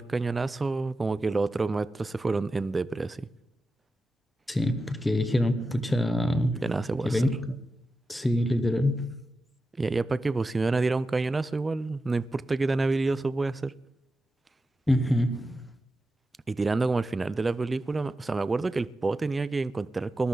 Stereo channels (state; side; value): normal; both; correlation 0.91